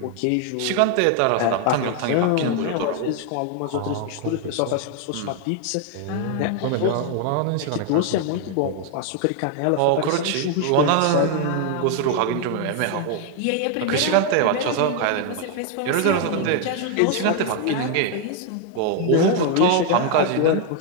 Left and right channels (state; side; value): different; both; correlation 0.00